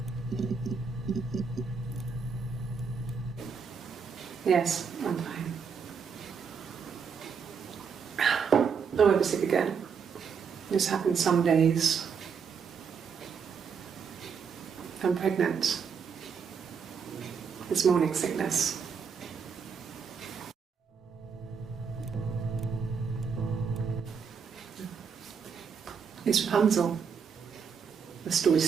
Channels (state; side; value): quieter; left; 6.2 dB